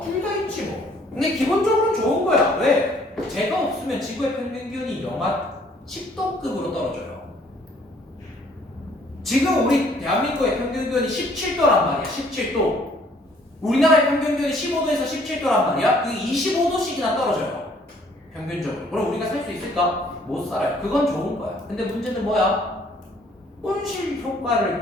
둘 다 있지 뭐. 근데 기본적으로 좋은 거야. 왜? 제가 없으면 지구의 평균 기온이 영하 10도급으로 떨어져요. 지금 우리 대한민국의 평균 기온이 17도란 말이야. 17도. 우리나라의 평균 기온이 15도에서 17도란 말이야. 그 25도씩이나 떨어져요. 평균적으로. 그럼 우리가 살 수 있을까? 못 살아요. 그건 좋은 거야. 근데 문제는 뭐야? 온실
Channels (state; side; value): normal; both; correlation 0.61